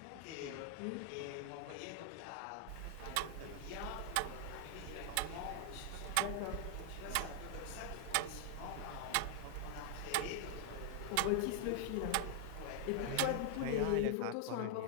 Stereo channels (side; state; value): both; different; correlation 0.00